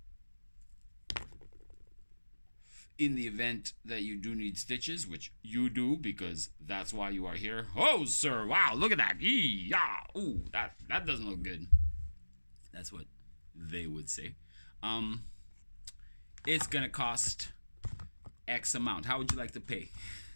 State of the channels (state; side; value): inverted; both; correlation -1.00